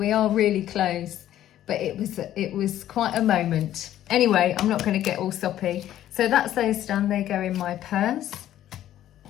are really close, but it was quite a moment. Anyway, I'm not going to get all soppy. So that's those done. They go in my purse.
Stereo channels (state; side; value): quieter; right; 12.4 dB